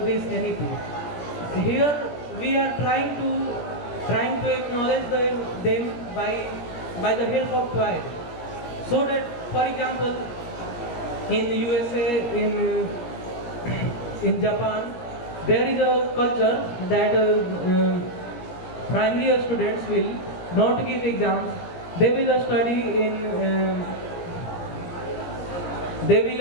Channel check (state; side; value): late; right; 17 ms